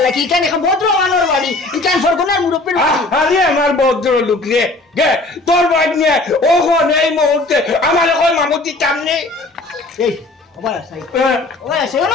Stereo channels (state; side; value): quieter; right; 3.0 dB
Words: লাগি এইখান এখন ভদ্র মানর বাড়ি এইখান সরগনার মুরব্বির বাড়ি আরে আমার ভদ্র লোক রে গে তোর বাইক নিয়ে ওখন এই মুহূর্তে আমার এখন মামুতি সামনে এই ওবা সাই ওবা সাই